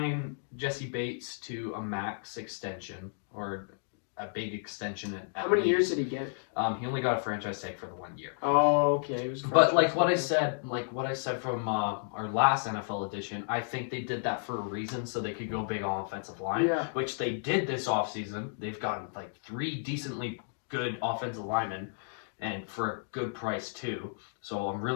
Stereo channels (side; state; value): right; silent; digital silence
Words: Jesse Bates to a max extension or a big extension at How many least. years did he get? He only got a franchise tag for the 1 year. Oh, okay. It was But like what I said from our last NFL edition, I think they did that for a reason, so they could go big on offensive line, Yeah. which they did this offseason. They've gotten like 3 decently good offensive linemen, and for a good price too. So I'm